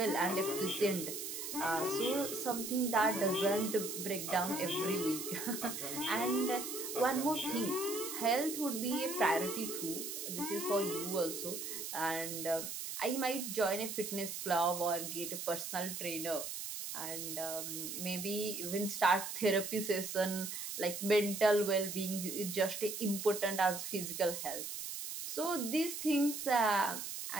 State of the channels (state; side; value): noise; right; hiss, 6 dB below the sound